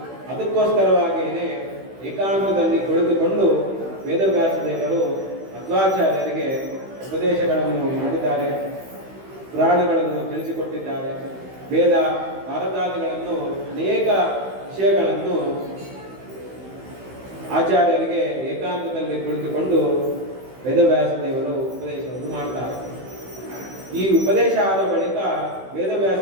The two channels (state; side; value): late; left; 16 ms